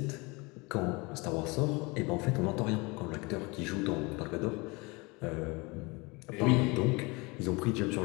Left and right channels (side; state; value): right; quieter; 26.5 dB